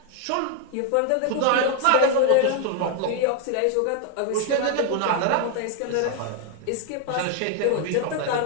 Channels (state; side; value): different; both; correlation 0.00